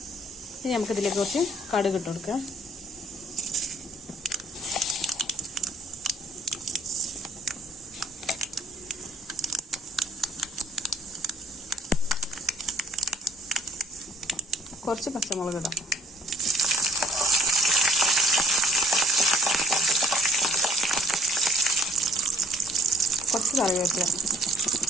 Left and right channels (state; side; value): normal; both; correlation 0.60